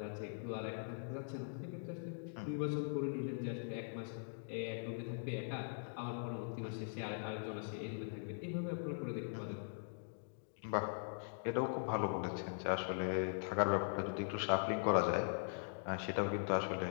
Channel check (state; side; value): silent; right; digital silence